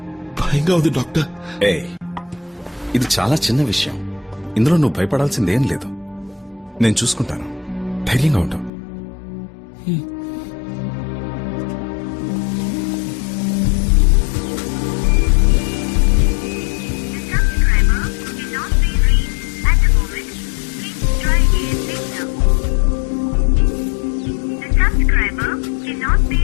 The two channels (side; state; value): right; drops out; at 8.7 s